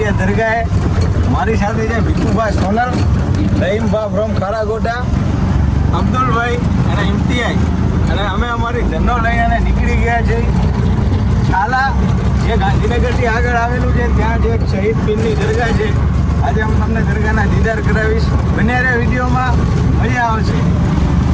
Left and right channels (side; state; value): both; identical; correlation 1.00